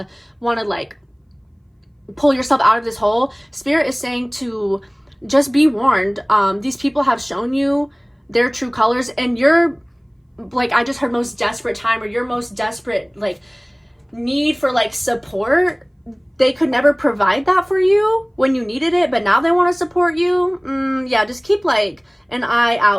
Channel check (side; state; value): both; identical; correlation 1.00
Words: want to like pull yourself out of this hole. Spirit is saying to just be warned. These people have shown you their true colors, and you're like, I just heard most desperate time, or your most desperate like need for like support. They could never provide that for you when you needed it, but now they want to support you. Yeah, just keep like an eye